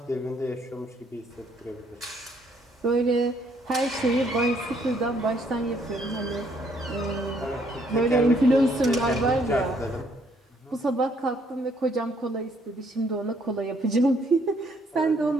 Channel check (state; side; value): normal; both; correlation 0.67